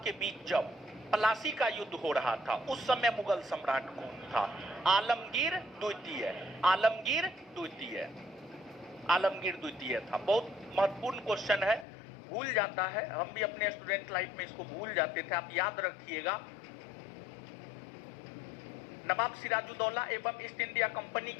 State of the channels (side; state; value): right; drops out; at 11.9 s